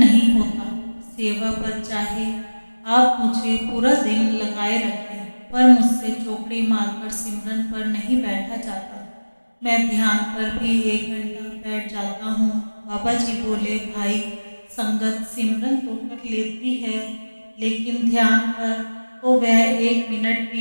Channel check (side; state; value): both; inverted; correlation -1.00